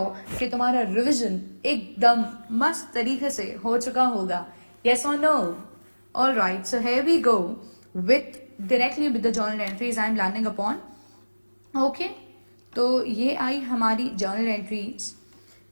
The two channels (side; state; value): both; inverted; correlation -1.00